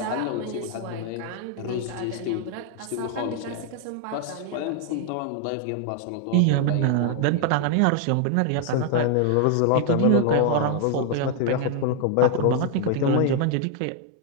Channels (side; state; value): both; different; correlation 0.00